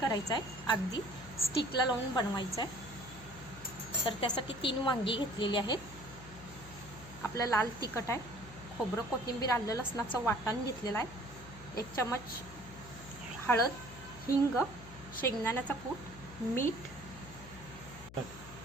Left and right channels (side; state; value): left; noise; hum, 16 dB below the sound